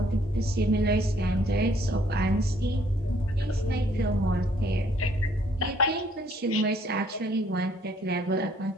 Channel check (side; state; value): both; normal; correlation 0.64